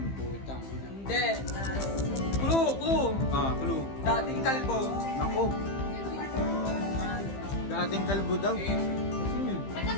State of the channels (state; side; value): late; right; 15 ms